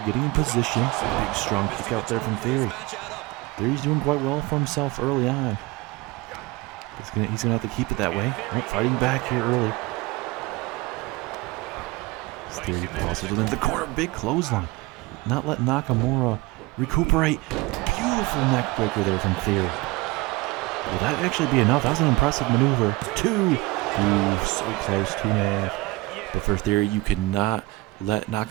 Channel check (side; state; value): left; quieter; 21.9 dB